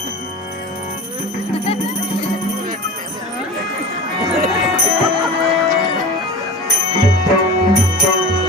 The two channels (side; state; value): both; normal; correlation 0.34